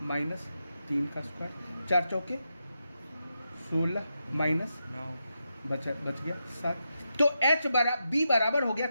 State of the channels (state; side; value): inverted; both; correlation -0.86